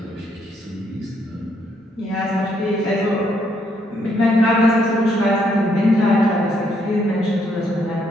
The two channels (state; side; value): normal; both; correlation 0.72